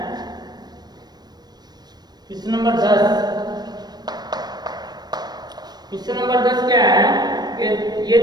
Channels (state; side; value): late; left; 0.19 ms